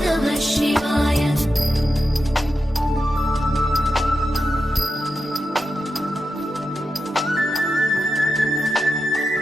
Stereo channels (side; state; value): both; normal; correlation 0.90